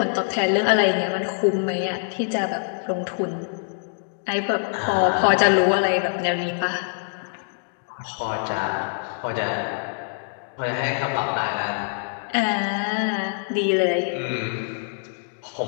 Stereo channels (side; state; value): right; silent; digital silence